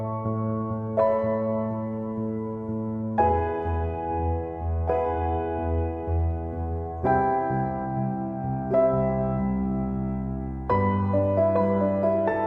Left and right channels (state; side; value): identical; both; correlation 1.00